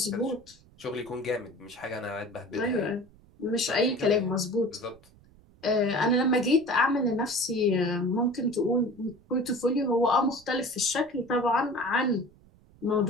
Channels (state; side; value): noise; right; rumble, 27 dB below the sound